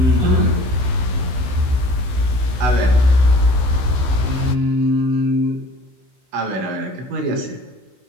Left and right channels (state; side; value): late; left; 15 ms